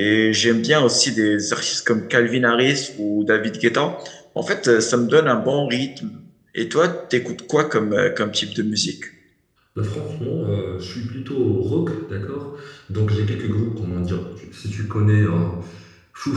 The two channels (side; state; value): both; identical; correlation 1.00